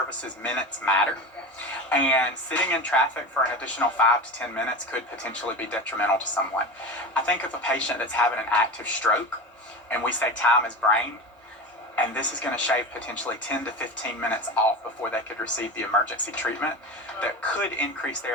minutes matter. And sitting in traffic for an additional 5 to 10 minutes could potentially be detrimental to someone. I think of a patient that's having an active stroke, and we say time is brain, and this is going to shave potentially 10 to 15 minutes off before they could receive the emergency treatment that could increase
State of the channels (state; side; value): normal; both; correlation 0.27